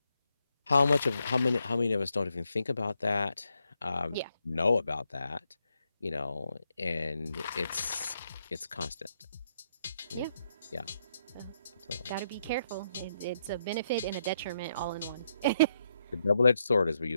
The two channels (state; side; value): inverted; both; correlation -0.78